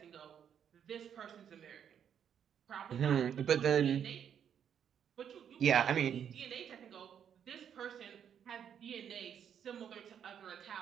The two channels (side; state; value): left; quieter; 8.6 dB